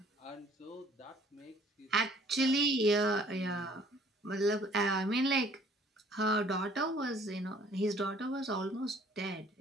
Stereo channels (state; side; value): normal; both; correlation 0.57